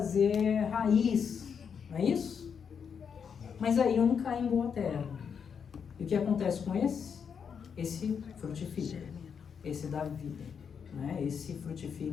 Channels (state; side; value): quieter; right; 6.8 dB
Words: raiz, não é isso? Mas aí um cai em boa terra. E o que acontece com esse? Esse frutifica, esse dá vida, né? Esse